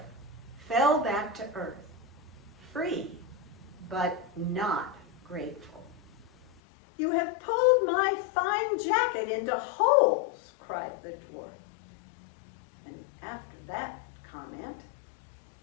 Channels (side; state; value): right; drops out; at 6.6 s